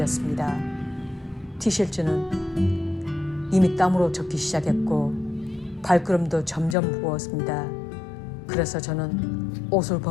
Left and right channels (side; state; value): right; drops out; at 6.8 s